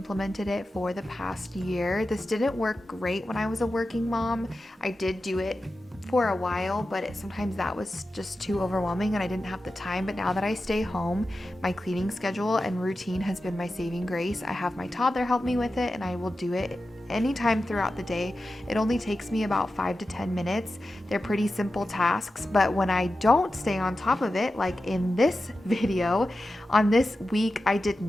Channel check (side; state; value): both; normal; correlation 0.92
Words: it for the past year. This didn't work great when I was a working mom. I did do it for a while, but sometimes that was just too overwhelming and I didn't have the time. But now that I stay home, my cleaning schedule and routine has been my saving grace. I have my toddler help me with it, and I will do it anytime throughout the day. It only takes me about 5 to 10 minutes. They're pretty simple tasks, but when I don't stay on top of it, like in this video, on this week, I did